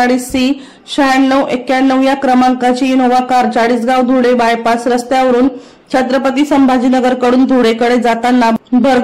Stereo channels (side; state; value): both; identical; correlation 1.00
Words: 9691 या क्रमांकाची Innova car Chalisgaon Dhule bypass रस्त्यावरून छत्रपती संभाजीनगर कडून धुळेकडे जाताना